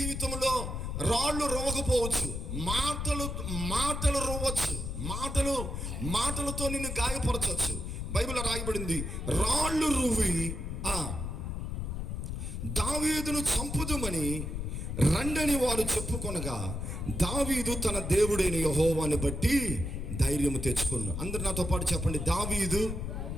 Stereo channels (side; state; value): left; noise; rumble, 4 dB below the sound